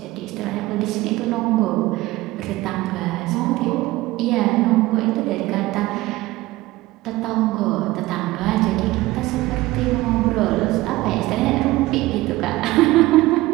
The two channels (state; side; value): quieter; left; 18.4 dB